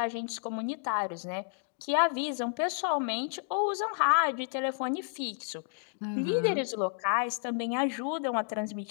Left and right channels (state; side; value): silent; right; digital silence